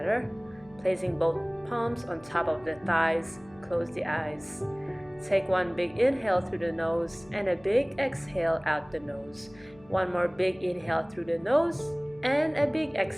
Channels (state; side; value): noise; left; hum, 25 dB below the sound